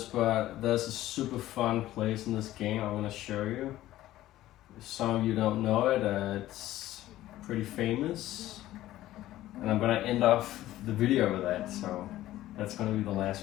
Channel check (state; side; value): quieter; right; 14.8 dB